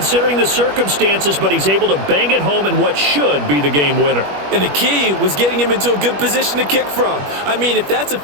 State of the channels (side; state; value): left; late; 21 ms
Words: the circumstances, but he's able to bang it home in what should be the game winner. And the key was getting him into a good position to kick from. I mean, if that's a